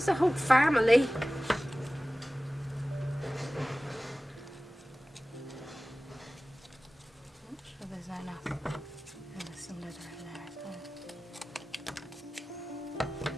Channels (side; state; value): both; normal; correlation 0.97